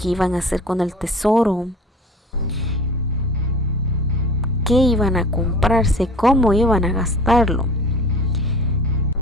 iban a hacer con el tesoro? ¿Qué iban a comprarse? ¿Cómo iban a gastarlo?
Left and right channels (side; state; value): both; normal; correlation 0.42